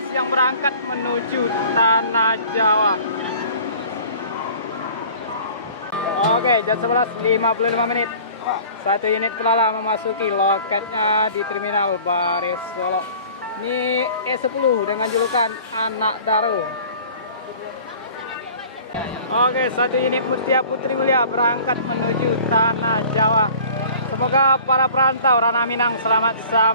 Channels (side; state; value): both; inverted; correlation -0.47